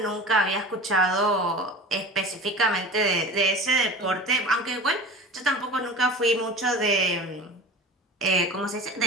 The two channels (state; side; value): normal; both; correlation 0.36